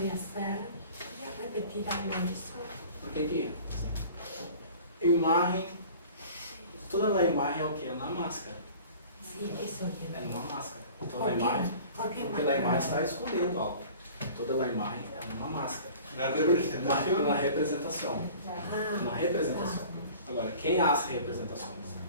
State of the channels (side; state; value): both; inverted; correlation -0.44